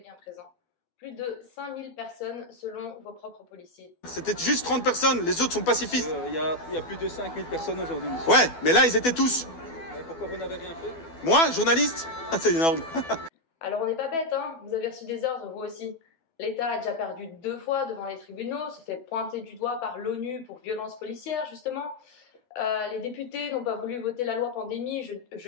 présents. Plus de 5000 personnes selon vos propres policiers. C'était juste 30 personnes, les autres sont pacifistes. Il y a plus de 5000 personnes aujourd'hui. Ouais, mais là, ils étaient tous. Mais pourquoi vous n'avez rien fait? Moi, journaliste? C'est énorme. Alors on n'est pas bête, hein, vous avez reçu des ordres, vous aussi. L'État a déjà perdu 2 fois devant les tribunaux, se fait pointer du doigt par l'ONU pour violence policière, justement. Les députés n'ont pas voulu voter la loi pandémie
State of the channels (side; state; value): right; late; 12 ms